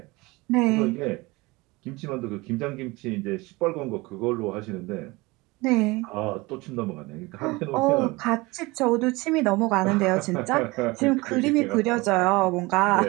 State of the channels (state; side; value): quieter; left; 23.0 dB